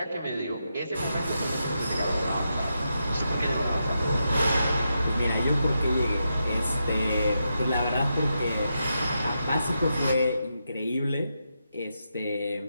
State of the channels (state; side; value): inverted; both; correlation -0.85